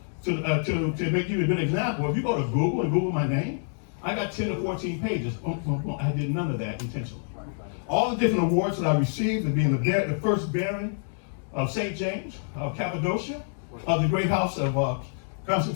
to make you a good example, if you go to Google and Google my name, I got 10 to 14 pages. I did none of that intentionally. All the different awards that I received, of being the first Baron of St. James, of Cappadocia, of the great house of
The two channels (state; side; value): silent; right; digital silence